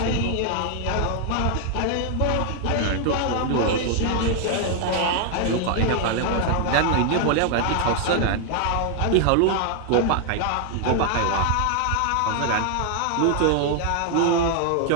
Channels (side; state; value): both; different; correlation 0.00